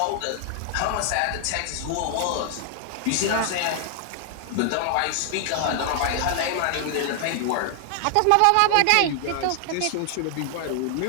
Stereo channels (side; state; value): both; different; correlation 0.00